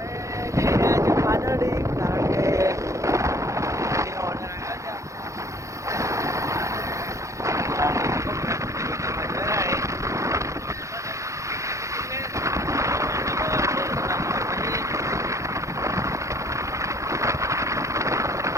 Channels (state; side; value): late; left; 0.15 ms